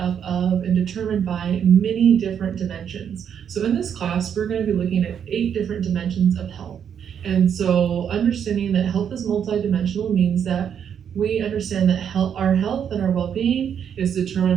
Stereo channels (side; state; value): left; quieter; 8.3 dB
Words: of and determined by many different dimensions. So in this class, we're going to be looking at 8 different dimensions of health. And so understanding that health is multidimensional means that we understand that our health and our well-being is